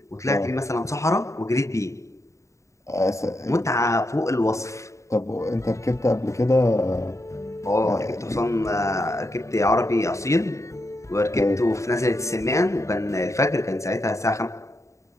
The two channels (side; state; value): right; late; 0.14 ms